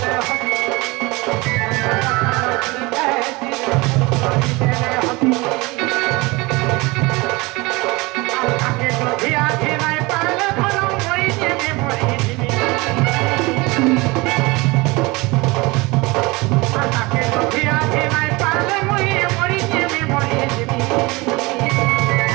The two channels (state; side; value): quieter; left; 23.9 dB